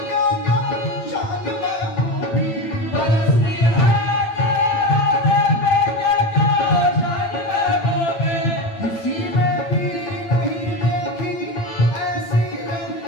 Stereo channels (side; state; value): right; late; 8.8 ms